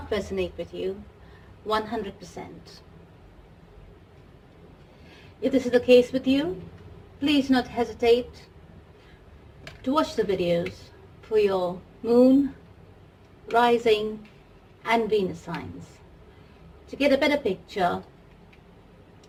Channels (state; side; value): identical; both; correlation 1.00